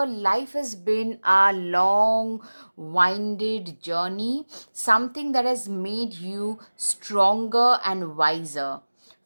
life has been a long, winded journey, something that has made you stronger and wiser.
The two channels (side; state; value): both; inverted; correlation -1.00